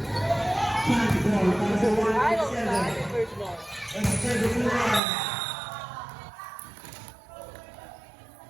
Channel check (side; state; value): left; drops out; at 5.0 s